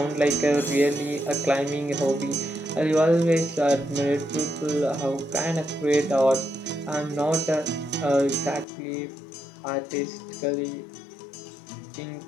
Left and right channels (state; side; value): drops out; right; at 8.7 s